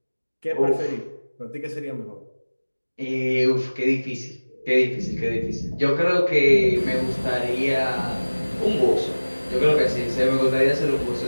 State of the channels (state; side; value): inverted; both; correlation -1.00